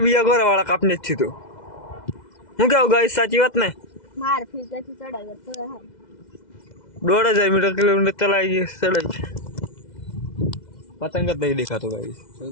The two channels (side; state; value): right; late; 2.0 ms